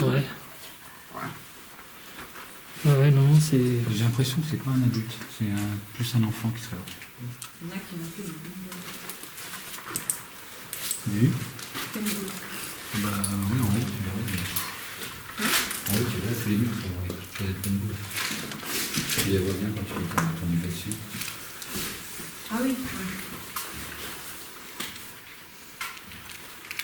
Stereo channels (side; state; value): both; identical; correlation 1.00